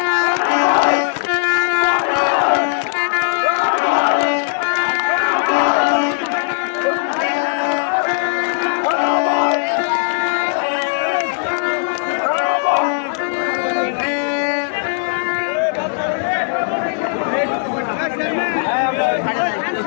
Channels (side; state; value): right; silent; digital silence